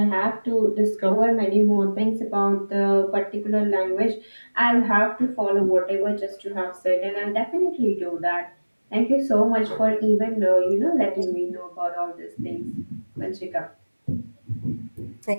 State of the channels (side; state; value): both; inverted; correlation -1.00